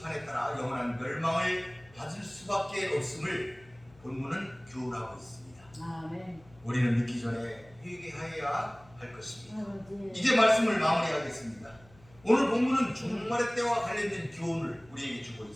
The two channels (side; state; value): left; noise; hum, 26 dB below the sound